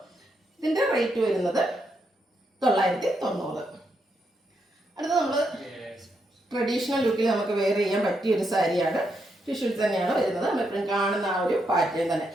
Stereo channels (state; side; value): normal; both; correlation 0.80